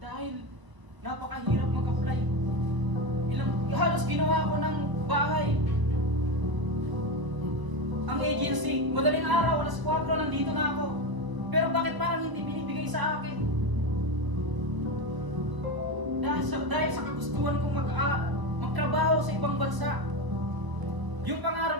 napakahirap mag-apply. Halos ginawa ko ng bahay. Ang agency, madaling araw, alas 4, nandito na ako. Pero bakit parang hindi binibigay sa akin? Dahil sa kagustuhan kong magtrabaho sa ibang bansa. Yung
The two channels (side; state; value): left; late; 1.0 ms